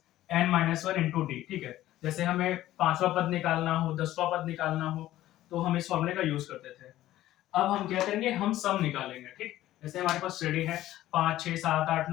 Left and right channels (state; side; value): quieter; right; 14.4 dB